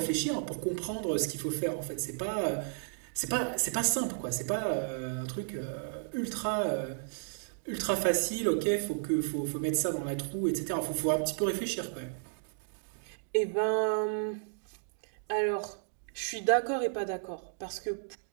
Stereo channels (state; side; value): silent; left; digital silence